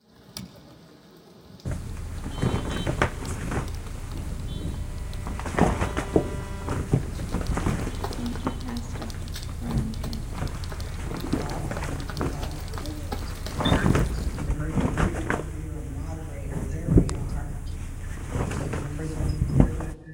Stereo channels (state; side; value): identical; both; correlation 1.00